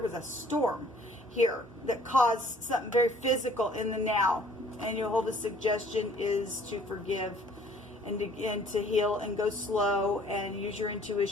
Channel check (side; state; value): both; normal; correlation 0.56